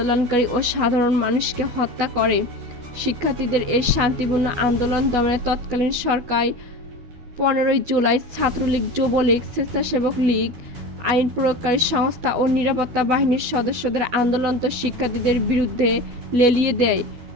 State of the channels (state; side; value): late; left; 12 ms